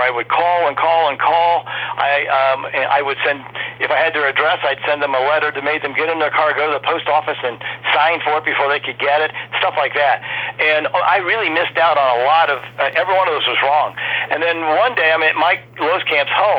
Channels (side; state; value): both; identical; correlation 1.00